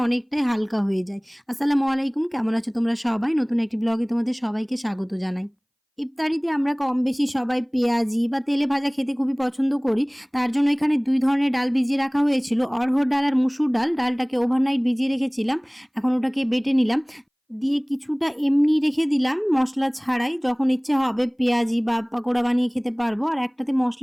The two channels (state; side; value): identical; both; correlation 1.00